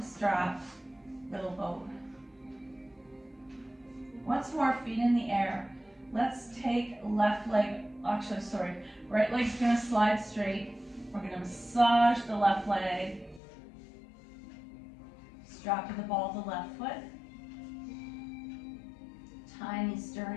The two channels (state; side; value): drops out; right; at 13.4 s